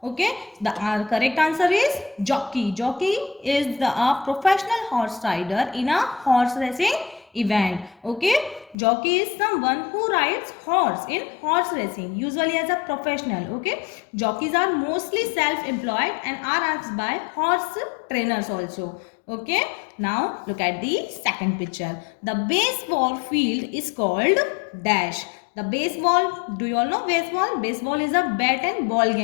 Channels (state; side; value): drops out; right; at 8.8 s